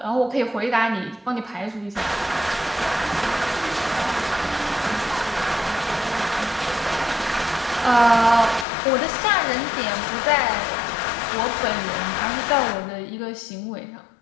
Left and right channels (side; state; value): right; drops out; at 8.7 s